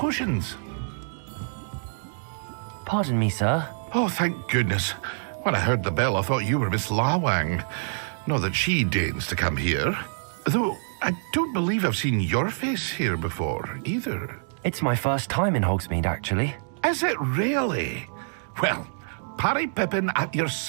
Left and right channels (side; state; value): left; silent; digital silence